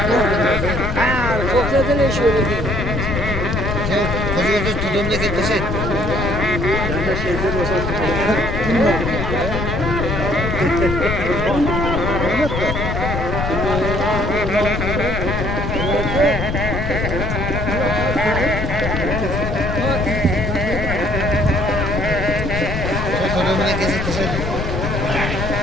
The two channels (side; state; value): left; noise; rumble, 3 dB below the sound